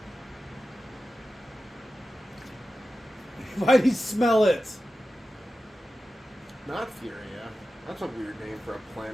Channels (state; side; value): normal; both; correlation 0.93